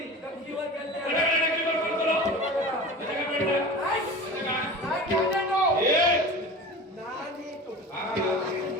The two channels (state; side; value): normal; both; correlation 0.35